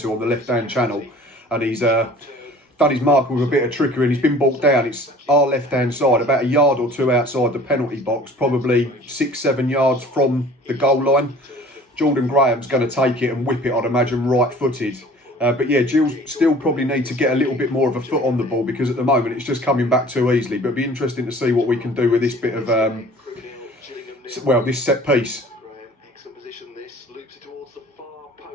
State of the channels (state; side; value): normal; both; correlation 0.48